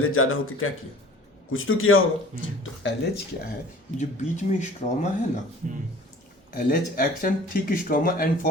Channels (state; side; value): normal; both; correlation 0.47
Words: ज़्यादा होकर क्या किया, कुछ तो किया होगा। तो LH क्या है, जो बीच में स्ट्रोमा है ना, LH acts on thick stroma and